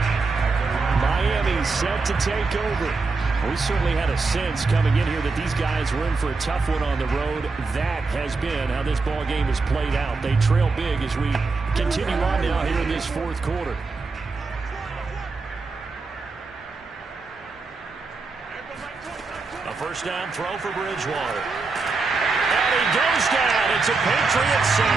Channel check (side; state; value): left; quieter; 4.1 dB